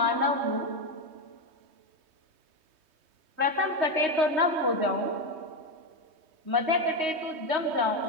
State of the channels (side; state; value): left; late; 3.2 ms